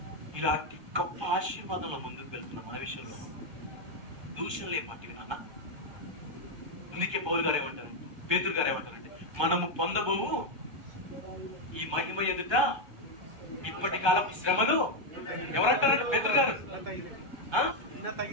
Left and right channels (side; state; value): left; late; 1.3 ms